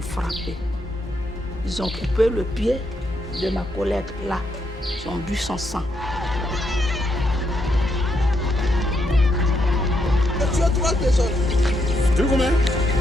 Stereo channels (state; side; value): normal; both; correlation 0.79